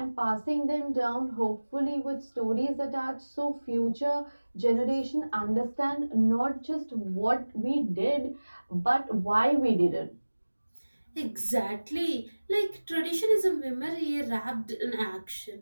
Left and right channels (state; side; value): inverted; both; correlation -1.00